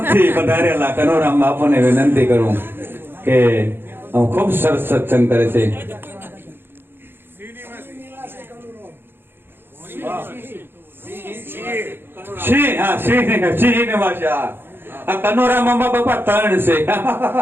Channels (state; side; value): late; left; 0.10 ms